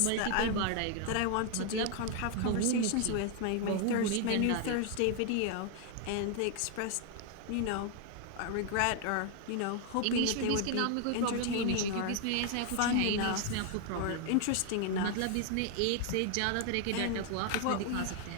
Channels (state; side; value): different; both; correlation 0.00